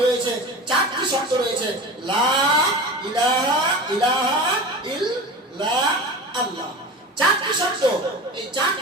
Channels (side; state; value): both; normal; correlation 0.32